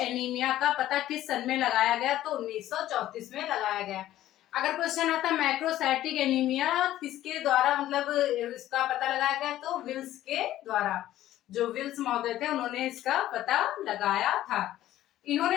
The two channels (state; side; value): quieter; right; 13.7 dB